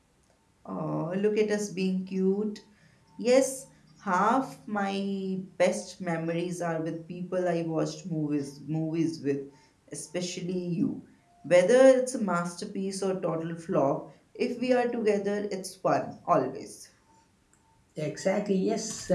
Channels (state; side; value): identical; both; correlation 1.00